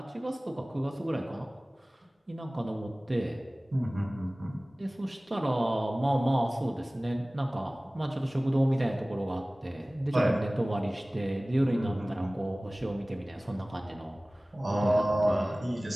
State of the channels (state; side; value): normal; both; correlation 0.98